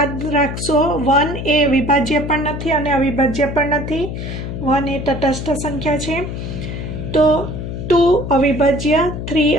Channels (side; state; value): left; noise; hum, 6 dB below the sound